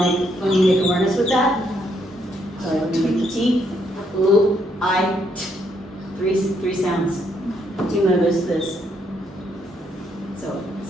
awareness with that, so we make the T, ooh, I, t, three sounds. Do you notice this? So,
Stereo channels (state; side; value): normal; both; correlation 0.73